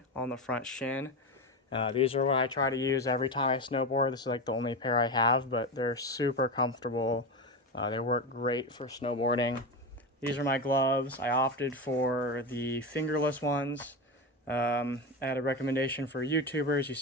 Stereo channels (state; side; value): normal; both; correlation 0.19